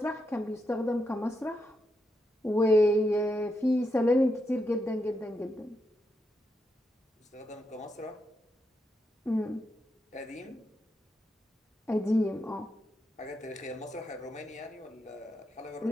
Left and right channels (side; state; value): both; normal; correlation 0.83